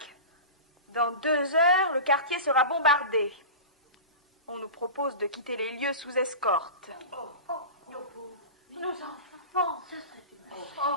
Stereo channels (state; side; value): inverted; both; correlation -0.30